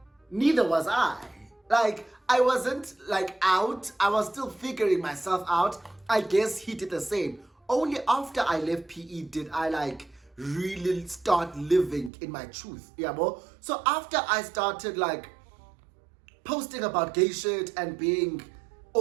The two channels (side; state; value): left; drops out; at 12.1 s